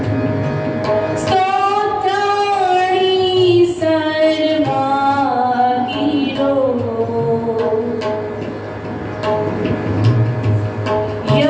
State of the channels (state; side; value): identical; both; correlation 1.00